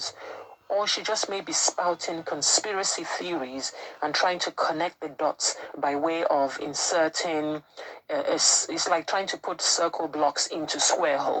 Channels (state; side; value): identical; both; correlation 1.00